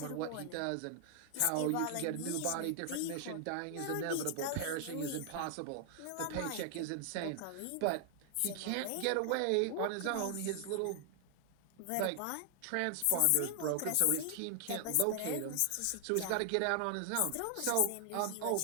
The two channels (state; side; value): different; both; correlation 0.00